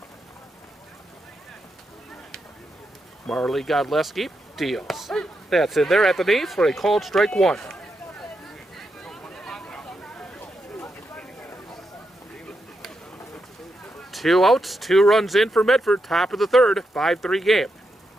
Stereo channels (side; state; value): both; normal; correlation 0.84